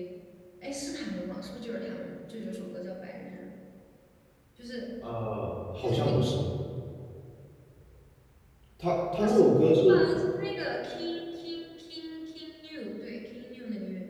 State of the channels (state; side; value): identical; both; correlation 1.00